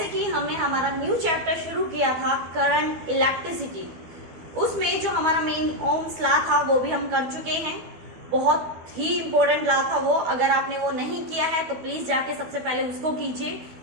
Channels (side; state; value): left; late; 12 ms